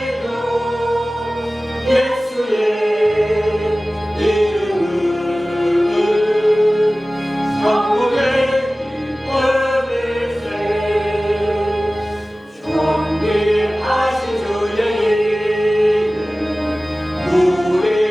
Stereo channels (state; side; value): normal; both; correlation 0.97